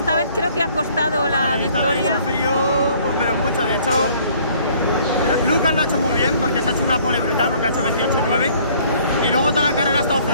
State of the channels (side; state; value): both; inverted; correlation -0.58